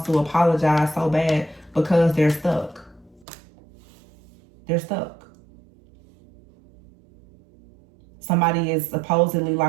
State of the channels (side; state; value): left; drops out; at 3.2 s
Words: to apologize so bad because they're stuck. They're stuck. Somebody is supposedly